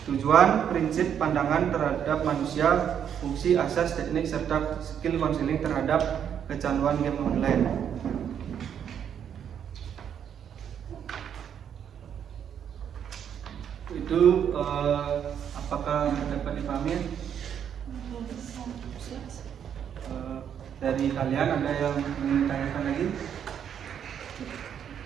tujuan, prinsip, pandangan terhadap manusia, fungsi, asas, teknik, serta skill counseling terhadap kecanduan game online. Itu apakah dapat dipahami? Dari kalian ada yang ingin tanyakan lagi?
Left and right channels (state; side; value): quieter; left; 8.7 dB